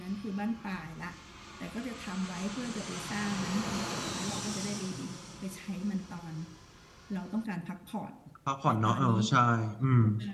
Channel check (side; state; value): both; identical; correlation 1.00